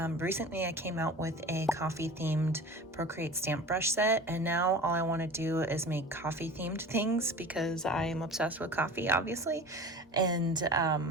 Recently I came out with a coffee themed Procreate stamp brush set, and now all I want to do is make coffee themed things because I am obsessed with coffee, obviously. And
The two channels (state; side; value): normal; both; correlation 0.38